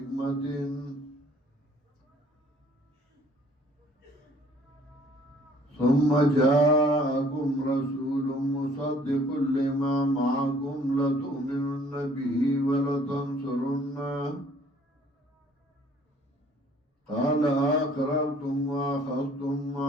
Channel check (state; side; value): normal; both; correlation 0.57